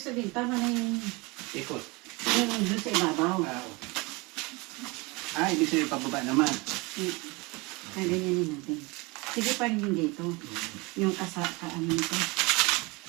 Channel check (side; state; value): left; quieter; 25.8 dB